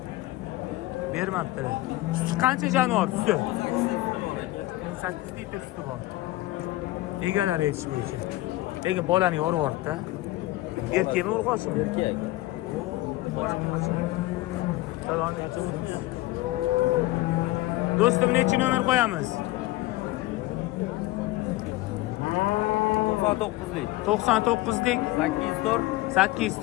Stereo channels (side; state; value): right; quieter; 18.3 dB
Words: Bermabdilar. Suti qancha jonivor suti? 18 litr suti bor. Egalar aytish bo'yicha. Lekin bolani yorib yubordi-da. Erkakmi urg'ochmi? Erkak. Bolam qancha? Salom alaykum. Do'stim, necha nomer qo'yamiz? 99lik. 99lik 804